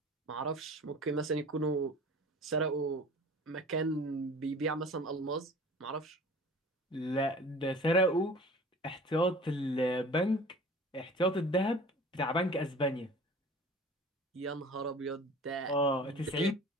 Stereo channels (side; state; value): both; normal; correlation 0.43